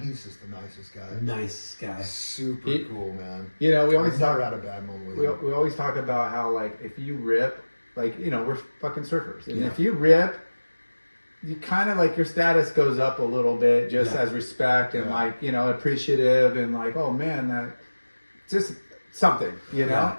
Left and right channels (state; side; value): inverted; both; correlation -1.00